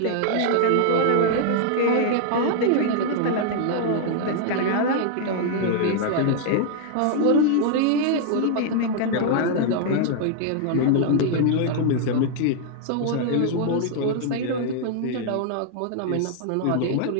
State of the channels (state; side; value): different; both; correlation 0.00